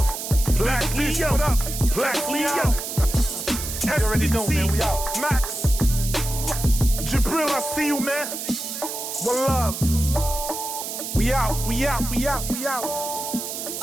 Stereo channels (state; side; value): noise; right; hiss, 6 dB below the sound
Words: Black Leo, what up? Black Leo. You already know, man, we out. Max, Jibril, I see you, man. One love. We out, we out, we out, we out.